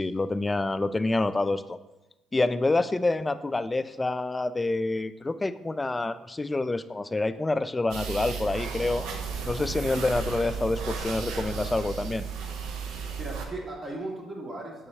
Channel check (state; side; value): normal; both; correlation 0.92